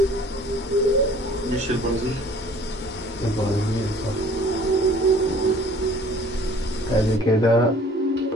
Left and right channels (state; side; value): normal; both; correlation 0.52